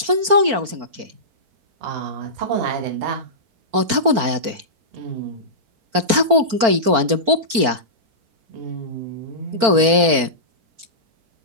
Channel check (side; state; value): left; late; 4.5 ms